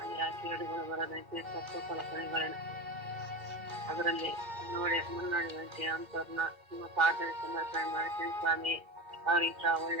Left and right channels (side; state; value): left; late; 2.1 ms